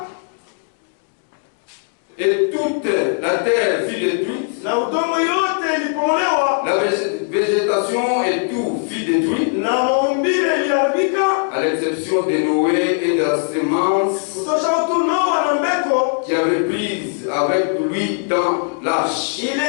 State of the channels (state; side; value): silent; right; 58 dB below the other